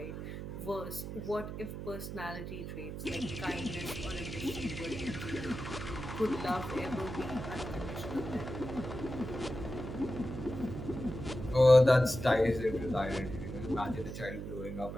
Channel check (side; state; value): right; noise; hum, 7 dB below the sound